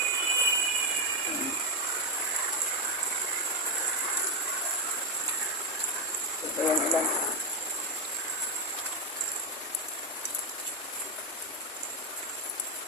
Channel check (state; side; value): normal; both; correlation 0.06